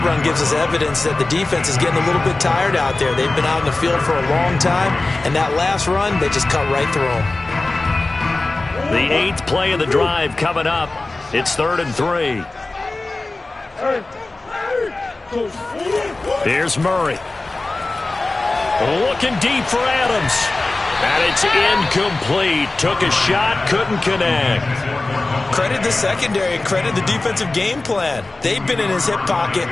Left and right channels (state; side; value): quieter; right; 3.1 dB